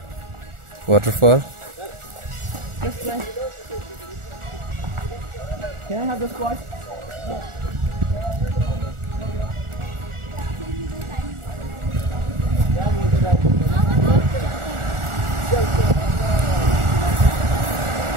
waterfall. Can I have the spot?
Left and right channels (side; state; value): left; late; 1.4 ms